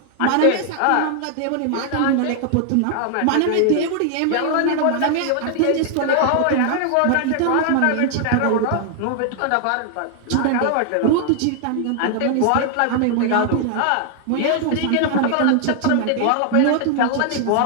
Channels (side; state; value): both; different; correlation 0.00